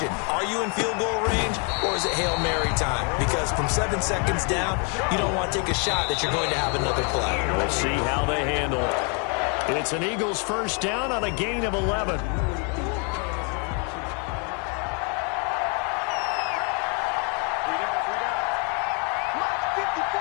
Are you in field goal range or is it Hail Mary time? Because from 7 seconds down, you don't want to take a shot that you're going to have another play. We'll see how they handle it. It's an Eagles 1st down on a gain of 11.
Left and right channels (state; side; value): quieter; right; 36.8 dB